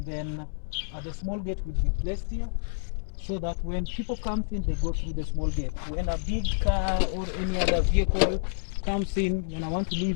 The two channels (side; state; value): right; silent; digital silence